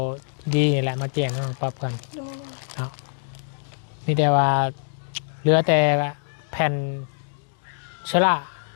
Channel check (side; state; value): right; silent; digital silence